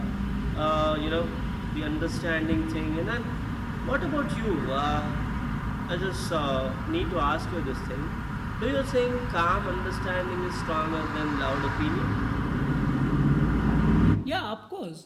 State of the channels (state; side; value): identical; both; correlation 1.00